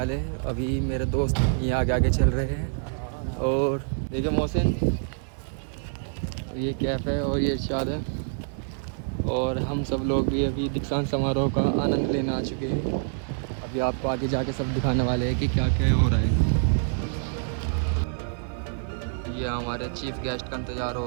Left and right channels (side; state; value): left; silent; digital silence